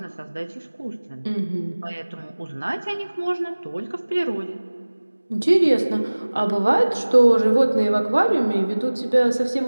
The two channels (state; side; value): inverted; both; correlation -1.00